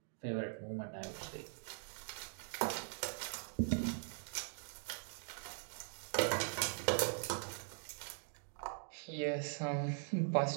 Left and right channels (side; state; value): left; silent; digital silence